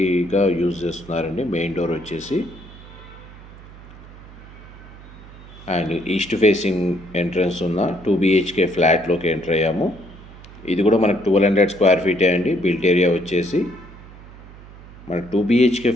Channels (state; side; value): noise; right; hum, 18 dB below the sound